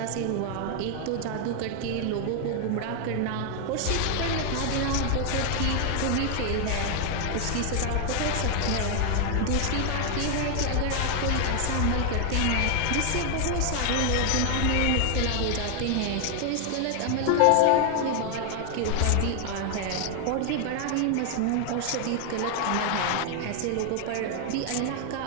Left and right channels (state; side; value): different; both; correlation 0.00